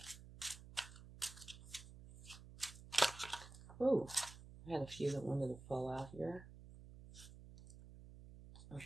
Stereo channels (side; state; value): right; noise; hum, 16 dB below the sound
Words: Oh, I had a few that wanted to fall out here.